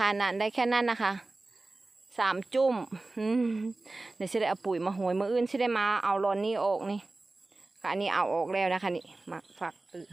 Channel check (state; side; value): quieter; left; 3.2 dB